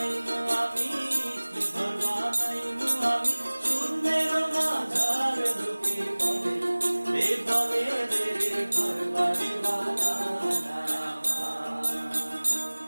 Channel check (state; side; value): inverted; both; correlation -1.00